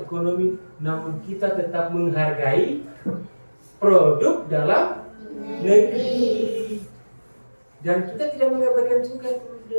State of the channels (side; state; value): both; inverted; correlation -1.00